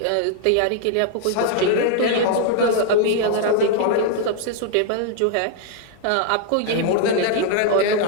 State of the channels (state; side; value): different; both; correlation 0.00